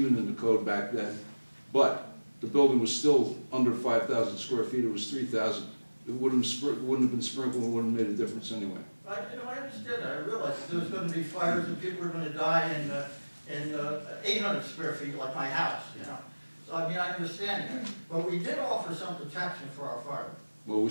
in the code back then, but the building was still under 5,000 square feet. It was 3,000. It wouldn't have been sprinkled. It wouldn't have made a difference anyway. I understand that. I realize that there was going to be fires and people were going to die in 800 square feet like my house, you know. So, I mean, I understand that. But we did offer some protection for our firemen. Well, we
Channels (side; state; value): both; inverted; correlation -1.00